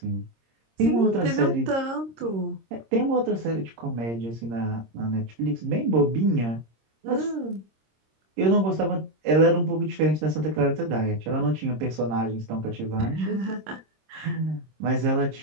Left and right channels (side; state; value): left; late; 26 ms